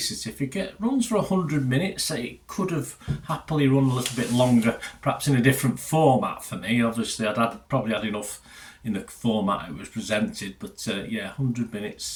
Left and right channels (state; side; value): identical; both; correlation 1.00